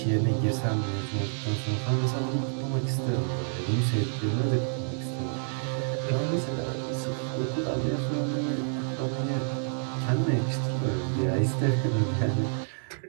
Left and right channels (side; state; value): left; silent; digital silence